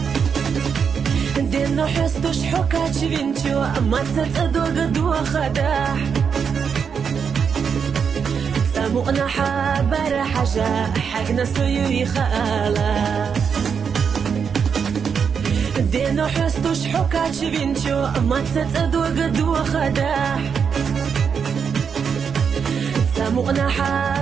دينو حستوش حكات شبينتو ما تتأدو قدو خداح سامونا حابر حاجة حقنا سيوي خالا دينو حستوش حكات شبينتو ما تتأدو قدو خداح سامونا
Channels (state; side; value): quieter; left; 6.6 dB